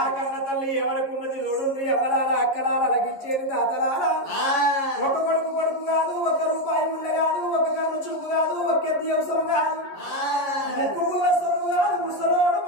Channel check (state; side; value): late; right; 11 ms